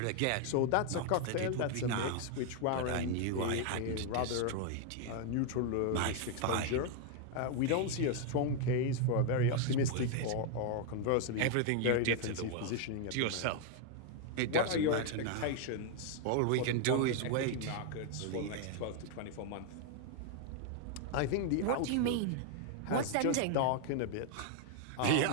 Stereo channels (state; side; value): different; both; correlation 0.00